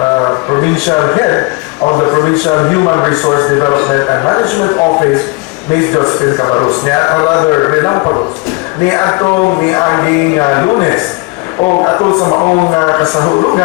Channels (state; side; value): quieter; right; 27.6 dB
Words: provincial head of the Provincial Human Resource Development and Management Office, Ms. Josephine Cabarrus. Rather, relampagos. Ni atong miaging Lunes o atol sa maong